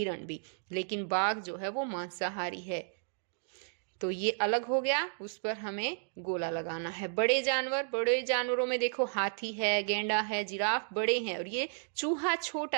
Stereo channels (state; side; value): silent; left; digital silence